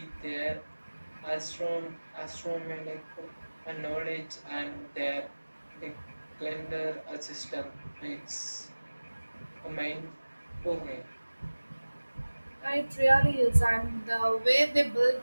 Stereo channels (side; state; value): both; inverted; correlation -1.00